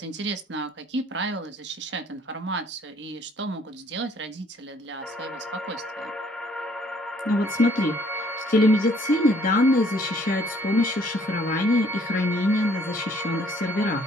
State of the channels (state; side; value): normal; both; correlation 0.62